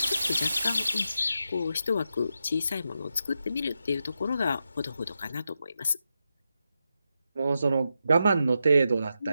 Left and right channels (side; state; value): both; inverted; correlation -0.87